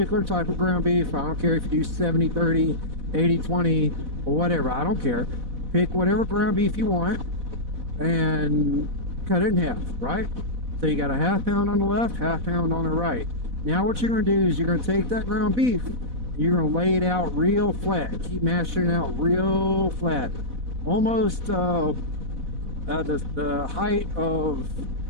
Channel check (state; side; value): late; left; 4.1 ms